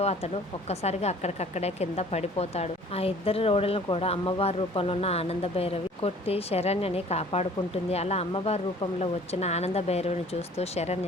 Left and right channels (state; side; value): normal; both; correlation 0.51